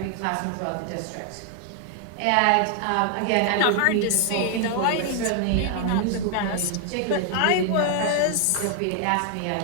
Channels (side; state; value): both; different; correlation 0.00